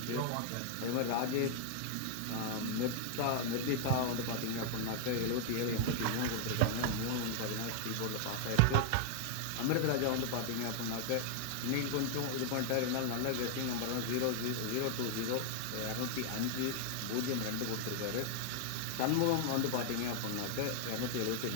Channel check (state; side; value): different; both; correlation 0.00